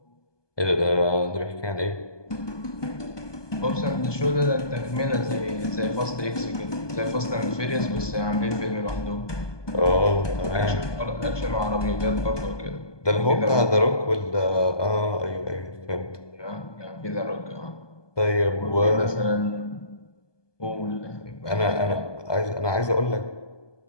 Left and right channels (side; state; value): right; late; 1.2 ms